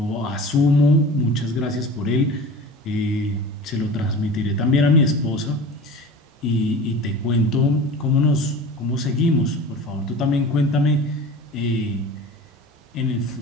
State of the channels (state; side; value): normal; both; correlation 0.37